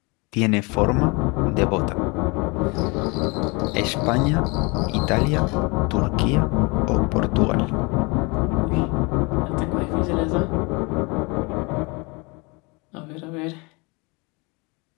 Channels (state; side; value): quieter; right; 28.3 dB